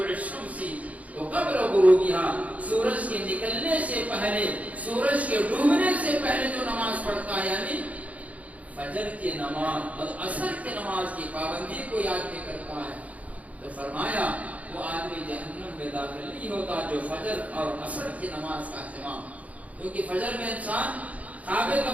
الشمس وقبل غروبها، سورج کے نکلنے سے پہلے، سورج کے ڈوبنے سے پہلے جو نماز پڑھتا ہے یعنی فجر کی نماز اور عصر کی نماز کی پابندی کو یاد بھی کرتا ہے، تو فرمایا وہ آدمی جہنم میں داخل نہیں ہوتا جو فجر اور عصر کی نماز کا اہتمام. کیونکہ فجر میں انسان خواب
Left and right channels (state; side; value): late; left; 0.069 ms